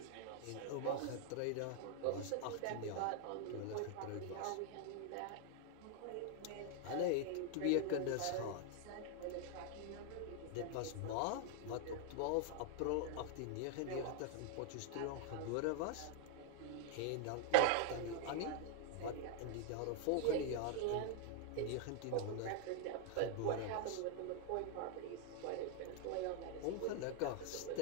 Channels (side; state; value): both; different; correlation 0.00